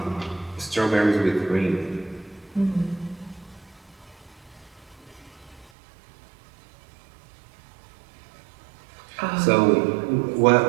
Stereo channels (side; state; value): left; drops out; at 5.7 s